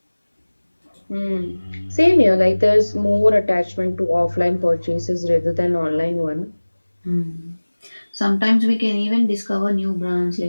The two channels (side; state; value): both; inverted; correlation -1.00